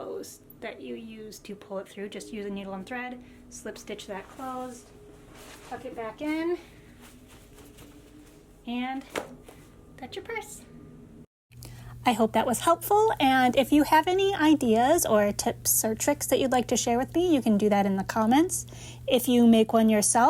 that you use to pull it through. Just use a needle and thread, slip stitch that closed, tuck it back in, and that's your purse. I hope that was helpful, and if you have any ideas or tips or tricks that you'd like to share with me, you can do that in the comments. If you make one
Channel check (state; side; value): identical; both; correlation 1.00